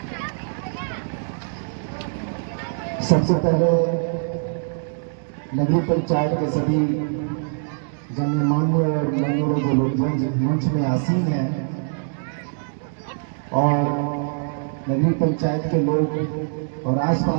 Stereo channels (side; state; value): left; silent; digital silence